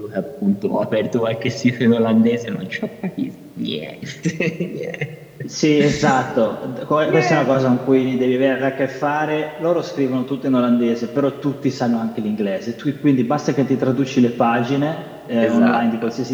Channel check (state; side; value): identical; both; correlation 1.00